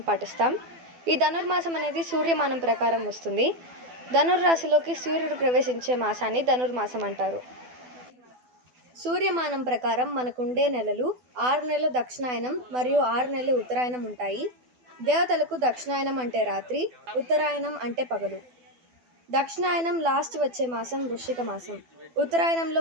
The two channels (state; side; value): late; left; 12 ms